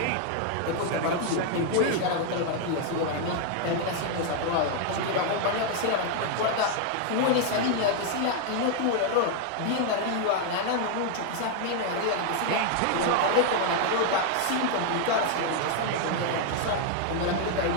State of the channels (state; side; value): different; both; correlation 0.00